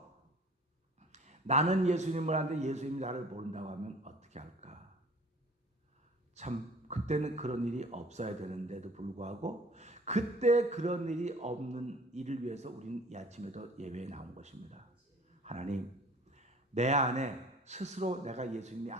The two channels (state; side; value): normal; both; correlation 0.48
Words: 나는 예수님을 아는데 예수님이 나를 모른다고 하면 어떻게 할까. 참 그때는 그런 일이 없어야 되는데도 불구하고 그때 그런 일이 없는 일을 위해서 우리는 이 아침에도 예배에 나온 것입니다. 하나님, 내 안에 스스로 내가 예수님이